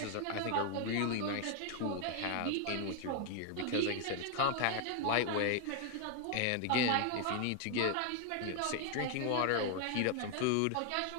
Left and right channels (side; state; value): both; different; correlation 0.00